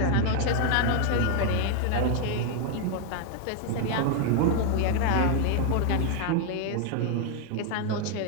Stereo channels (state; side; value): different; both; correlation 0.00